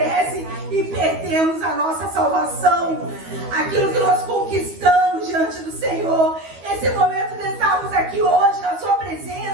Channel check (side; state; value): left; late; 12 ms